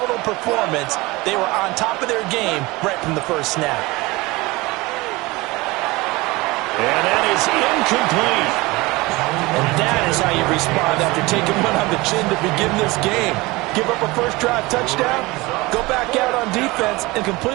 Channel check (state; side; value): quieter; left; 22.2 dB